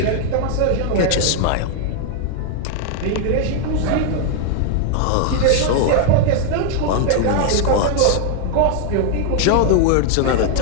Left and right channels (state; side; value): different; both; correlation 0.00